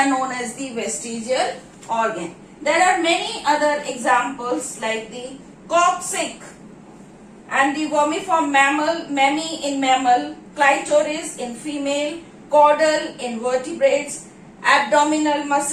known as the vestigial organ. There are many other examples like the coccyx and the vermiform mammal, mammae in mammal, clitoris in female, caudal in vertebrates, abdominal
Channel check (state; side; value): identical; both; correlation 1.00